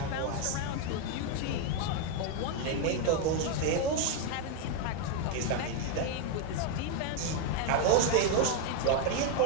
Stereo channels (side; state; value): both; different; correlation 0.01